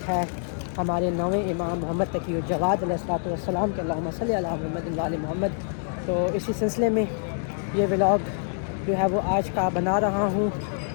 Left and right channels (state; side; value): silent; right; digital silence